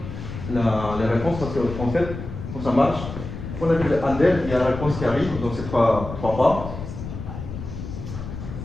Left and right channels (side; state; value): left; noise; rumble, 8 dB below the sound